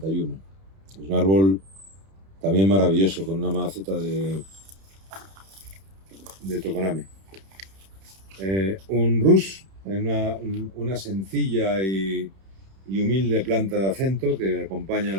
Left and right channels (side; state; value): left; late; 31 ms